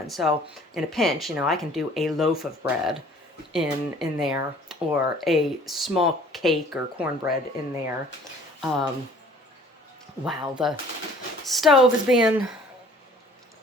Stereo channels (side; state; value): both; normal; correlation 0.53